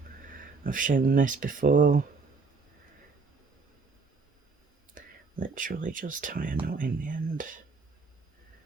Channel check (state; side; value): quieter; left; 4.4 dB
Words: I've shown this before. Literally just tie a knot in the end.